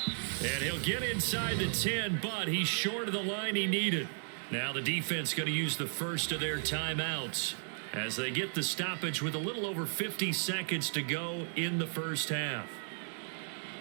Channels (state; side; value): silent; left; digital silence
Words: And he'll get inside the 10, but he's short of the line he needed. Now the defense going to use the first of their timeouts as they get the stoppage with a little over 50 seconds to go in the first half.